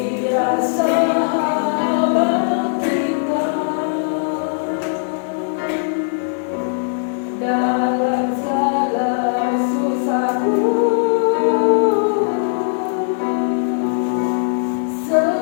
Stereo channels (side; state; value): right; silent; 67 dB below the other